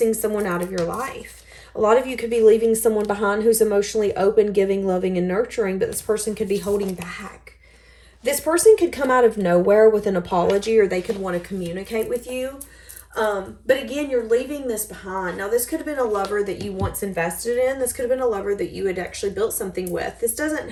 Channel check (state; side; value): identical; both; correlation 1.00